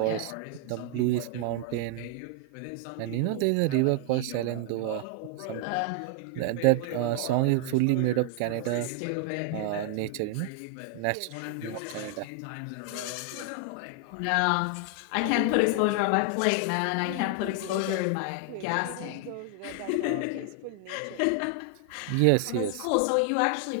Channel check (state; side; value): different; both; correlation 0.00